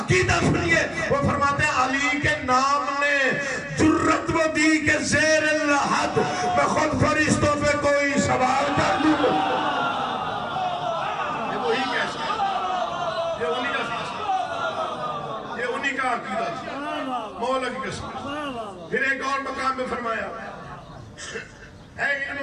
عقیدہ سنیے, وہ فرماتے ہیں علی کے نام نے جرت و دی کے زیر الحد میں خود فرشتوں پہ کوئی سوال کر دوں گا. یہ وہی کیسا ہے, یہ انہی کا فیصلہ, یہ انہی کا عقیدہ تھا, مولا کی قسم. پھر ایک اور مقام میں فرمایا ہے علم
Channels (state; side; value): identical; both; correlation 1.00